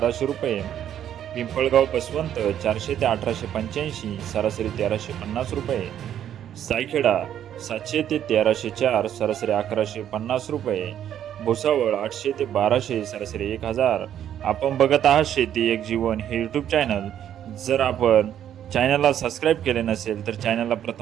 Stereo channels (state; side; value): quieter; left; 10.3 dB